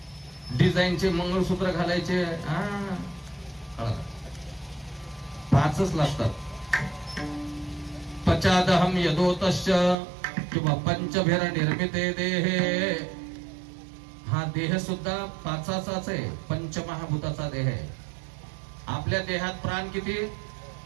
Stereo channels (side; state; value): left; drops out; at 10.0 s